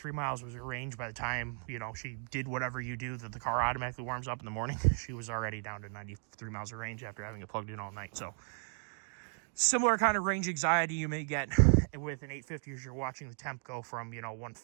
miles was her range. By the time, she did whatever you do, that the car automatically warms up in the morning, she was already down to 93 miles of range after having it plugged in all night. So similar kind of range anxiety you may get with an 850 as you're watching the temp go from,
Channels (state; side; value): silent; left; 54 dB below the other